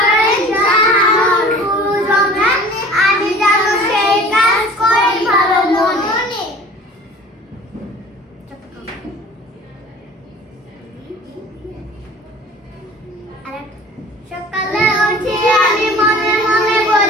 জানানোর গুরুজনে আমি যেন সেই কাজ করি ভালো মনে। সকালে উঠে আমি মনে মনে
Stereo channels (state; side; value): normal; both; correlation 0.45